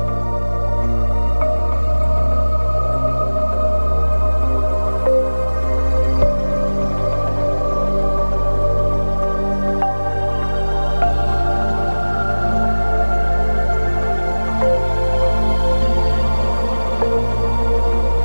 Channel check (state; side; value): inverted; both; correlation -1.00